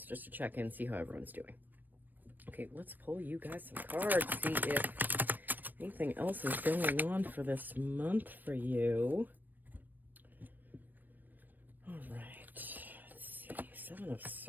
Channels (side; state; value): left; late; 0.090 ms